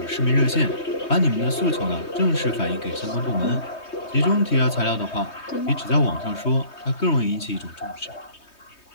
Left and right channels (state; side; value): late; right; 3.2 ms